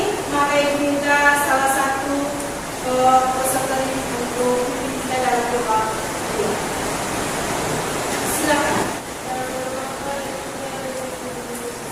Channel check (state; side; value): identical; both; correlation 1.00